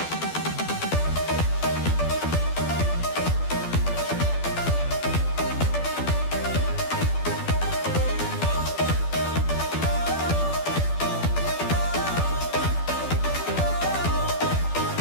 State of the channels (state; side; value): late; right; 12 ms